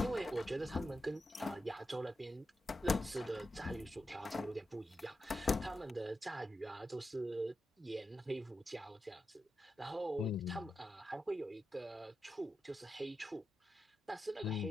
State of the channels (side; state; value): both; normal; correlation 0.89